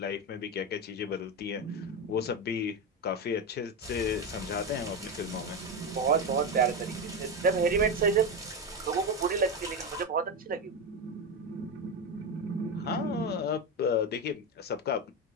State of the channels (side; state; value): both; normal; correlation 0.14